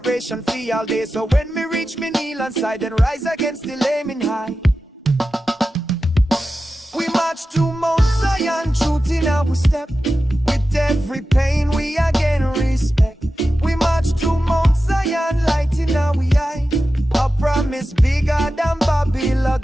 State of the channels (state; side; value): normal; both; correlation 0.93